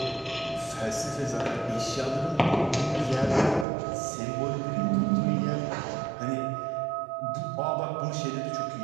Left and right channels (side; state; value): left; drops out; at 3.7 s